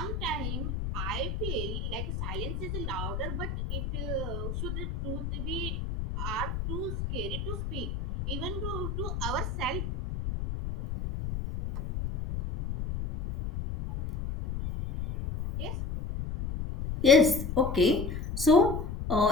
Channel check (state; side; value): noise; left; rumble, 4 dB below the sound